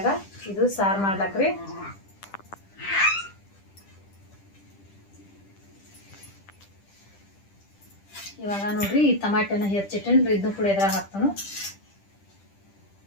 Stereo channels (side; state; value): right; late; 10 ms